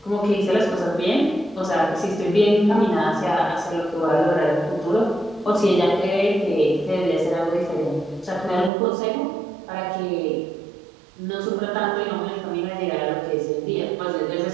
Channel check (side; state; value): left; drops out; at 8.7 s